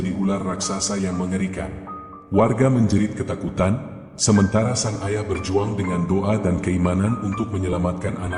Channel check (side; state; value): both; identical; correlation 1.00